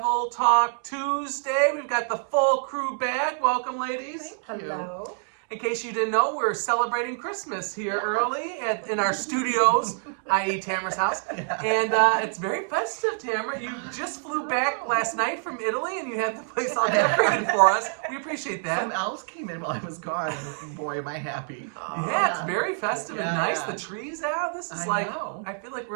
Talk Tuesday. We've got the full crew back. Welcome, ladies. Thank you. Hello. In case you didn't know, we're celebrating Christmas here early in our studios, i.e. Tamara's house. Yeah. And it's very festive, Tamara. You just flew back last night from Italy and you had the place all decorated for us. We appreciate that. Some elves came in while I was gone. Boy, am I happy. Yeah, it's very festive and Yeah, nice. yeah. The trees out. This is I know. I feel like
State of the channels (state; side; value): silent; left; 61 dB below the other